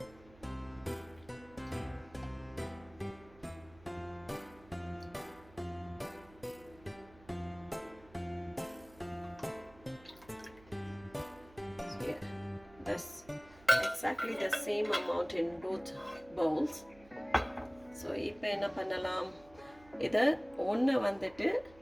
Yeah, that's exactly the same amount in both bowls. So இப்போ என்ன பண்ணலாம், இதை ஒன்று வந்துட்டு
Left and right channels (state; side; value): noise; right; hum, 23 dB below the sound